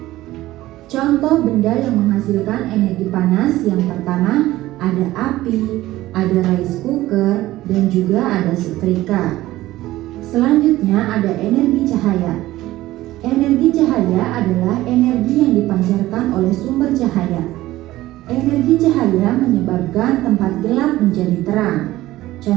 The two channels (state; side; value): quieter; left; 16.3 dB